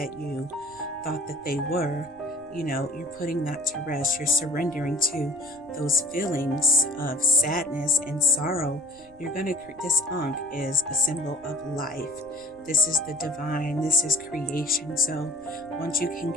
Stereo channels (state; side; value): noise; right; rumble, 27 dB below the sound